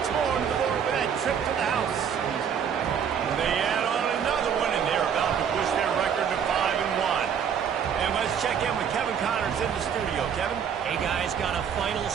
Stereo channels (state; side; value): quieter; left; 7.7 dB